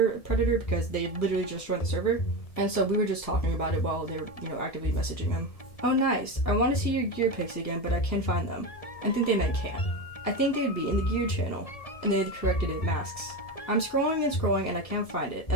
a predator because they literally just joined the server. And so we were just talking about it while they were, actively messaging him. Oh nice, I want to see your gear pics again, but I can't find them. I think they meant can. I think they'd be in the gear channel, and they had corrected it masks. I'm scrolling and I can't find it,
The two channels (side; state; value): right; late; 1.7 ms